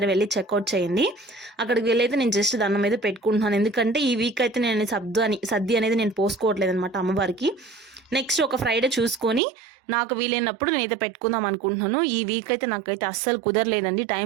వెళ్ళి చెక్అవుట్ చేయండి. అక్కడికి వెళ్ళి అయితే నేను జస్ట్ దండం అయితే పెట్టుకుంటున్నాను. ఎందుకంటే ఈ వీక్ అయితే నేను సర్ది అనేది నేను పోసుకోవట్లేదు అనమాట అమ్మవారికి. నెక్స్ట్ ఒక ఫ్రైడే చూసుకొని నాకు వీలైనప్పుడు నేనైతే పెట్టుకుందాం అనుకుంటున్నాను. ఈ వీక్ అయితే నాకైతే అస్సలు కుదరలేదండి,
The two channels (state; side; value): drops out; left; at 9.4 s